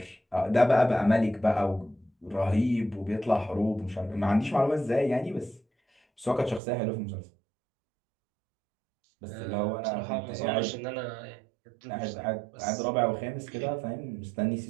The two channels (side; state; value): left; drops out; at 6.6 s